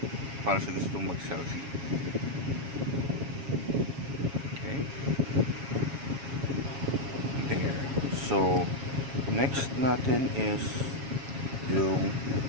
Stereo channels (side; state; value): left; late; 7.3 ms